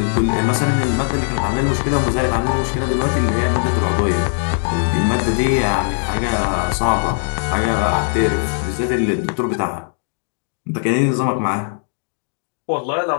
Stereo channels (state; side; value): silent; right; digital silence